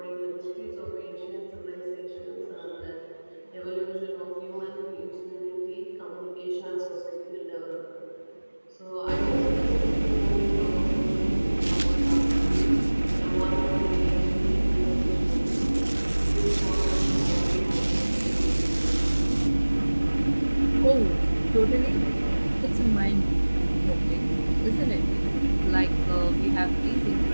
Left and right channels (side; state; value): both; inverted; correlation -1.00